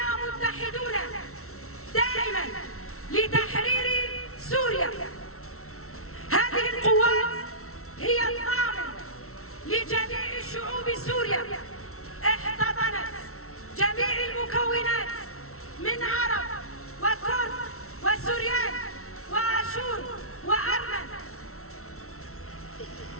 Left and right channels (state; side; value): late; right; 0.63 ms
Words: متحدون دائما لتحرير سوريا. هذه القوات هي الضامن لجميع شعوب سوريا، احتضنت جميع المكونات من عرب وكرد وسوريان واشور وارمن.